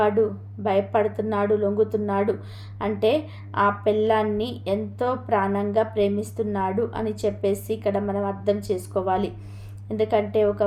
భయపడుతున్నాడు, లొంగుతున్నాడు అంటే ఆ పెళ్ళాన్ని ఎంతో ప్రాణంగా ప్రేమిస్తున్నాడు అని చెప్పేసి ఇక్కడ మనం అర్థం చేసుకోవాలి. ఎందుకంటే ఒక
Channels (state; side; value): identical; both; correlation 1.00